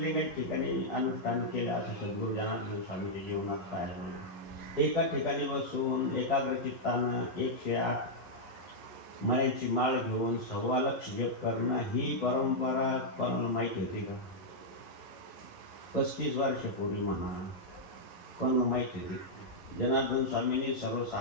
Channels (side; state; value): right; late; 11 ms